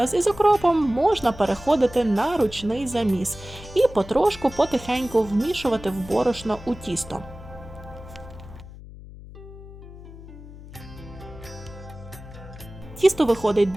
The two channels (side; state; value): left; noise; hum, 16 dB below the sound